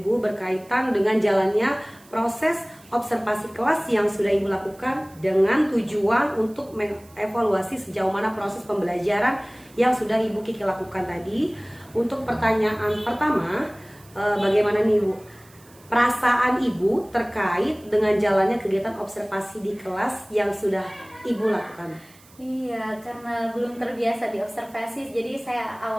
berkaitan dengan jalannya proses observasi kelas yang sudah Ibu lakukan dengan tujuan untuk mengevaluasi sejauh mana proses pembelajaran yang sudah Ibu Kiki lakukan tadi. Untuk pertanyaan pertama, bagaimana nih Ibu perasaan Ibu terkait dengan jalannya kegiatan observasi di kelas yang sudah Ibu lakukan? Iya, karena belum terbiasa di observasi, jadi saya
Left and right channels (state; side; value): noise; right; hiss, 26 dB below the sound